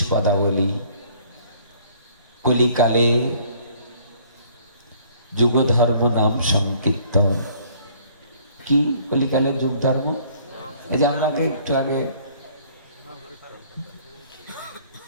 পদাবলী, কলিকালে যুগ ধর্ম নাম সংকীর্তন। কি কলিকালের যুগ ধর্ম? এই যে আমাকে একটু আগে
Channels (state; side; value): inverted; both; correlation -0.58